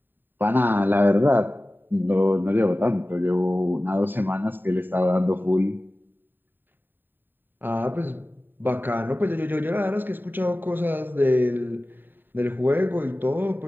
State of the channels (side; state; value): left; late; 0.093 ms